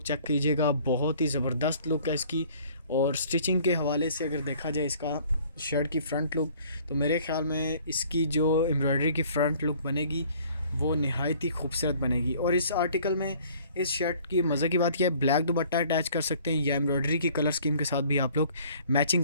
चेक कीजिएगा, बहुत ही ज़बरदस्त लुक है इसकी। और स्टिचिंग के हवाले से अगर देखा जाए इसका शर्ट की फ़्रंट लुक, तो मेरे ख़्याल में इसकी जो एम्ब्रॉयडरी की फ़्रंट लुक बनेगी वो नहायत ही खूबसूरत बनेगी। और इस आर्टिकल में इस शर्ट की मज़े की बात यह है, ब्लैक दुपट्टा अटैच कर सकते हैं, या एम्ब्रॉयडरी की कलर स्कीम के साथ भी आप लोग मैचिंग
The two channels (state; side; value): inverted; both; correlation -0.55